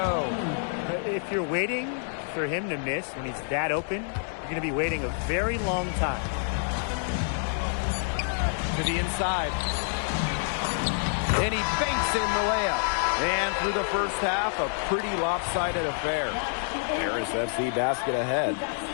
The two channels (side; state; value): right; silent; 60 dB below the other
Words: If you're waiting for him to miss when he's that open, you're going to be waiting a very long time. To the inside. And he banks in the layup. And through the first half, a pretty lopsided affair. Paris FC basket ahead.